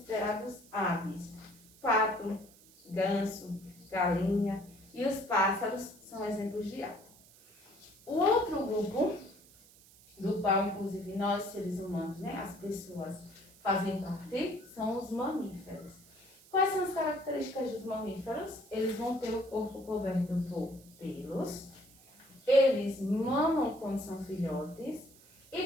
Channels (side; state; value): right; noise; hiss, 24 dB below the sound